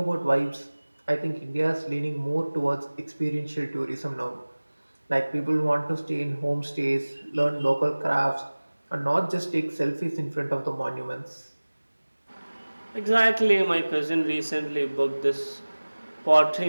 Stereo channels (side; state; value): both; inverted; correlation -1.00